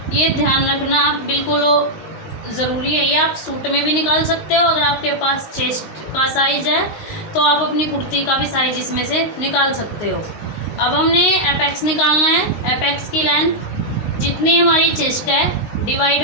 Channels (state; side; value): late; right; 19 ms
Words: ये ध्यान रखना आप, बिल्कुल ज़रूरी है। ये आप सूट में भी निकाल सकते हो, अगर आपके पास चेस्ट का साइज है तो आप अपनी कुर्ती का भी साइज इसमें से निकाल सकते हो। अब हमने एपेक्स निकालना है। एपेक्स की लेंथ जितनी हमारी चेस्ट है,